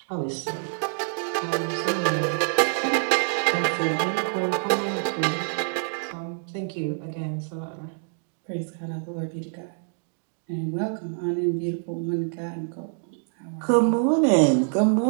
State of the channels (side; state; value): left; silent; 61 dB below the other